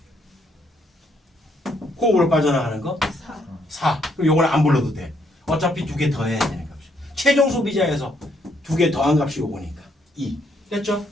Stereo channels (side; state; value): both; normal; correlation 0.72